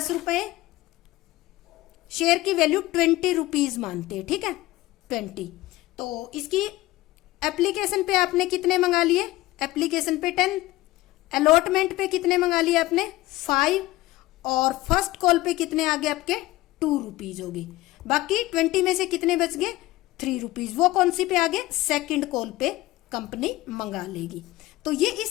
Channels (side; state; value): right; quieter; 18.0 dB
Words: रुपए, शेयर की वैल्यू 20 रुपीज मानते हैं, ठीक है, 20। तो इसकी एप्लीकेशन पे आपने कितने मंगा लिए, एप्लीकेशन पे 10, अलॉटमेंट पे कितने मंगा लिए आपने 5, और फर्स्ट कॉल पे कितने आ गए आपके 2 रुपीज हो गए। बाकी 20 में से कितने बच गए, 3 रुपीज, वो कौन सी पे आ गए, सेकंड कॉल पे कंपनी मंगा लेगी। तो ये